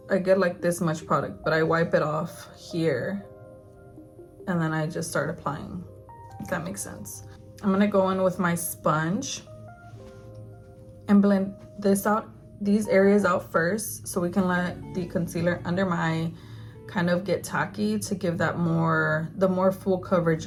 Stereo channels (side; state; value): both; identical; correlation 1.00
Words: I get like this much product, but I wipe it off here and then I just start applying, if that makes sense. I'm gonna go in with my sponge and blend this out, these areas out first, so we can let the concealer under my eye kind of get tacky to give that the more full coverage